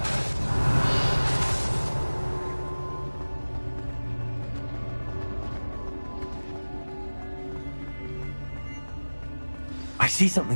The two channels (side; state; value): both; inverted; correlation -1.00